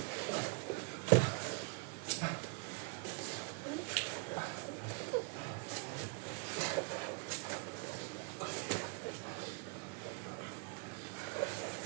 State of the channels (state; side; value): quieter; left; 32.9 dB